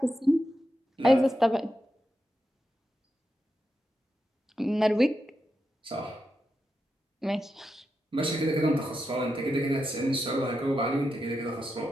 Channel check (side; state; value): both; normal; correlation 0.87